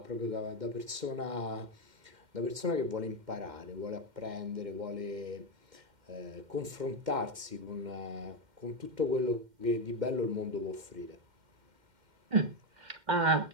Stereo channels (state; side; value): late; left; 2.1 ms